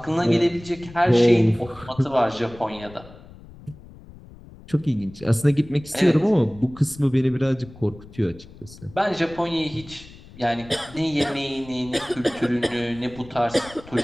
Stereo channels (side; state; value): left; noise; rumble, 20 dB below the sound